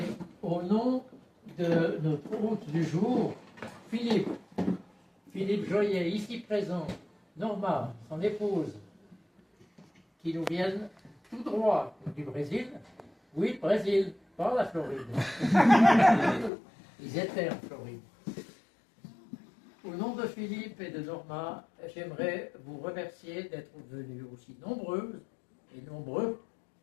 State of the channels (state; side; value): drops out; right; at 16.5 s